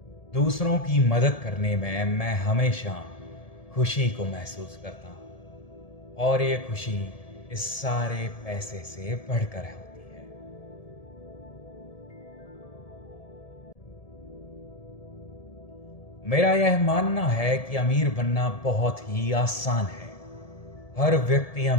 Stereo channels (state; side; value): late; right; 1.7 ms